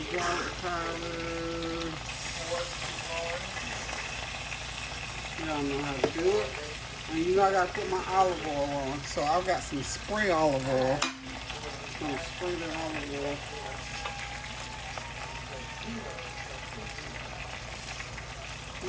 garlic powder. Y'all know how to do it. And you know I gotta put my olive oil on. So I've got some spray olive oil. I'm gonna spray that olive oil.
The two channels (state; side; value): identical; both; correlation 1.00